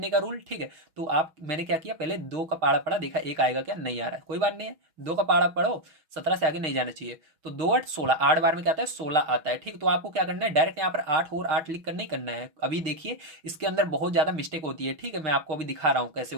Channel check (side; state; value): left; late; 6.2 ms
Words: का रूल, ठीक है। तो आप मैंने क्या किया, पहले दो का पाड़ा पढ़ा, देखा एक आएगा क्या, नहीं आ रहा है, कोई बात नहीं है, दो का पाड़ा पढ़ो, 17 से आगे नहीं जाना चाहिए। तो दो आठ 16, 8 बार में क्या आता है, 16 आता है, ठीक। तो आपको क्या करना है, डायरेक्ट यहाँ पर 8 और 8 लिख कर नहीं करना है। अभी देखिए इसके अंदर बहुत ज्यादा मिस्टेक होती है, ठीक है, मैं आपको अभी दिखा रहा हूँ कैसे